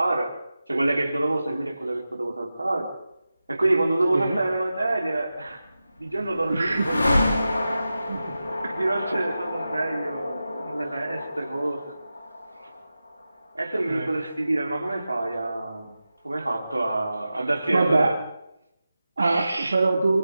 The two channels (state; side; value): inverted; both; correlation -0.93